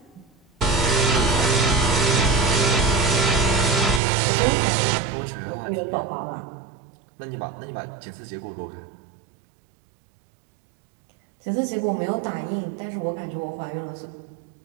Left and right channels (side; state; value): left; drops out; at 4.0 s